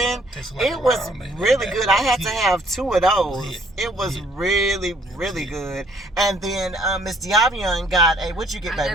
It was really good. I had to have 2 of those. It was really good. And then Miss Diavion got a, what'd you get, baby?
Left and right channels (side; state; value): both; normal; correlation 0.62